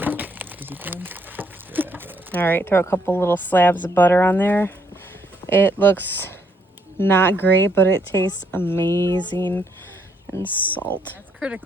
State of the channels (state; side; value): normal; both; correlation 0.72